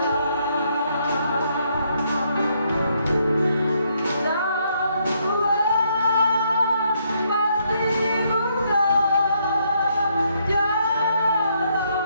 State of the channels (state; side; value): inverted; both; correlation -0.73